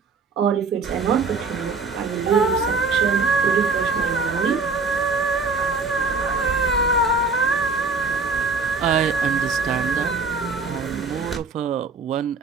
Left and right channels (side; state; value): left; quieter; 4.2 dB